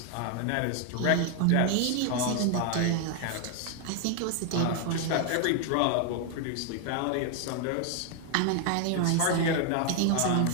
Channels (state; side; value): different; both; correlation 0.00